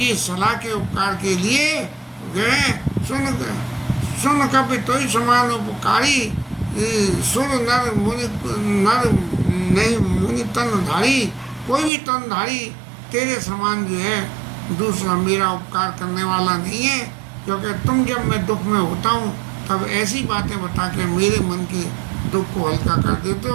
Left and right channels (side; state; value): left; drops out; at 11.9 s